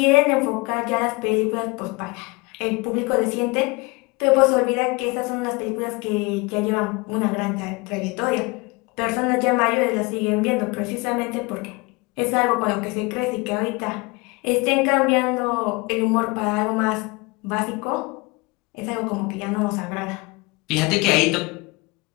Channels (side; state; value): right; quieter; 25.8 dB